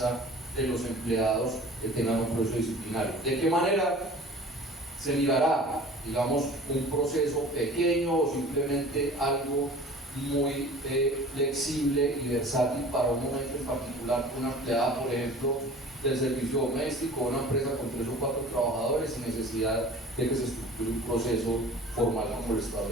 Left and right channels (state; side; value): normal; both; correlation 0.43